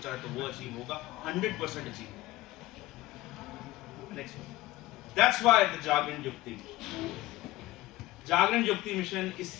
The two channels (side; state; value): right; quieter; 18.0 dB